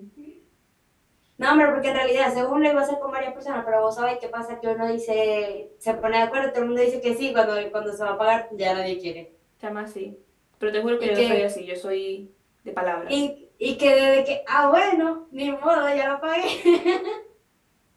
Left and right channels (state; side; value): identical; both; correlation 1.00